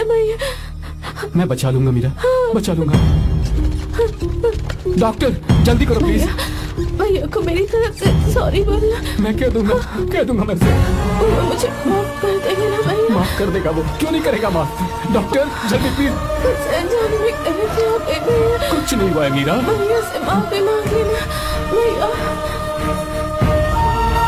भैया। मैं बचा लूंगा मीरा, बचा लूंगा। डॉक्टर जल्दी करो प्लीज। भैया को मेरी तरफ से सॉरी बोलना। मैं कह दूंगा मैं से। वो मुझे माफ कर देगा ना भैया? माफ कर देगा वो, क्यों नहीं करेगा माफ? डॉक्टर जल्दी प्लीज। कुछ नहीं हुआ है मीरा। भैया से माफी मांग लेना भैया।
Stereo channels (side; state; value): both; identical; correlation 1.00